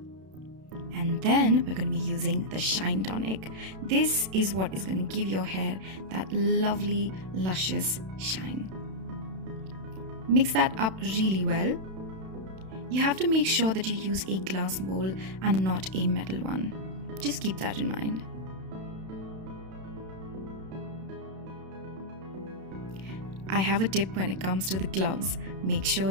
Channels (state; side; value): late; left; 32 ms